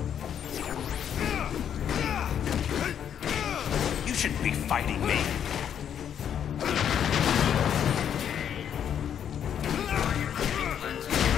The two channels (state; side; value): quieter; right; 8.9 dB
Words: Shouldn't be fighting me.